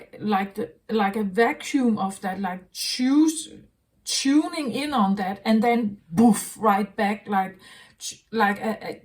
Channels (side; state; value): both; identical; correlation 1.00